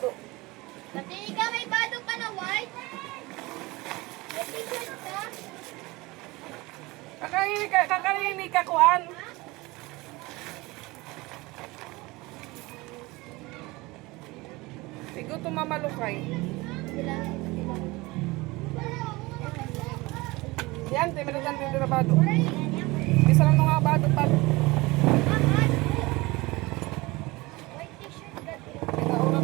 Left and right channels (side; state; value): left; quieter; 22.3 dB